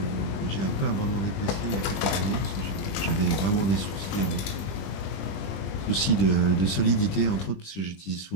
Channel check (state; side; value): late; right; 20 ms